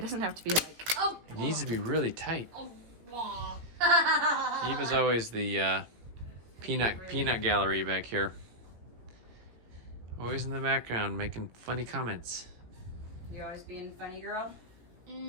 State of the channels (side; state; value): left; late; 17 ms